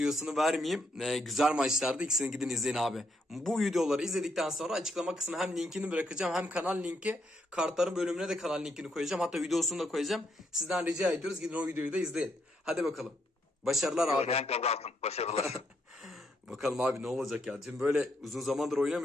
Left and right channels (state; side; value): normal; both; correlation 0.76